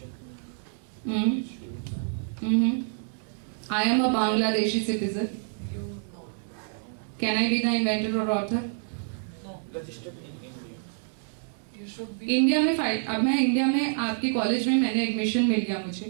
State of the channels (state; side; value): silent; left; digital silence